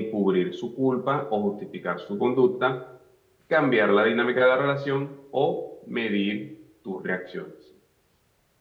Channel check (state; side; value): identical; both; correlation 1.00